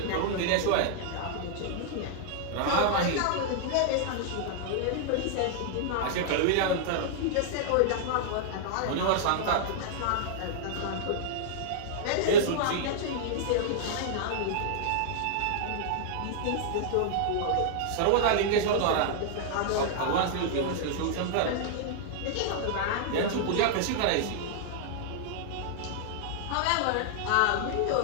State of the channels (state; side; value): different; both; correlation -0.01